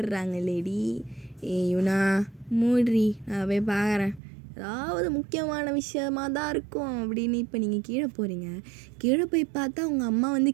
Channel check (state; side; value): drops out; left; at 4.2 s